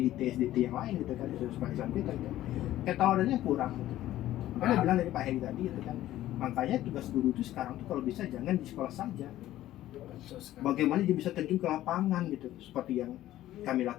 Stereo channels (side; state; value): right; quieter; 14.1 dB